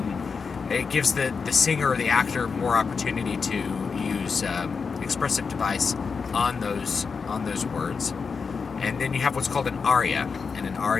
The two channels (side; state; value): right; quieter; 5.3 dB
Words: it gives the singer or the actor more opportunity to use expressive device on those words. And then you have what's called an aria, and an